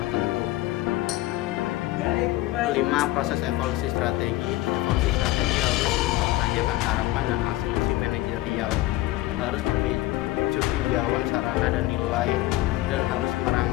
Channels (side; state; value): right; quieter; 17.1 dB